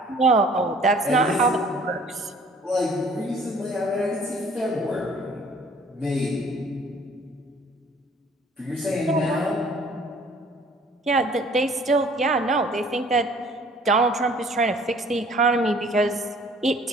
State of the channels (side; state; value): both; normal; correlation 0.54